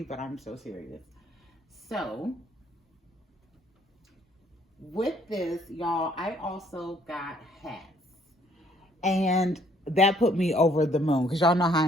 but I'm so serious. So with this, y'all, I also got hats. And that put me over the moon, because y'all know how I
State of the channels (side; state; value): both; normal; correlation 0.64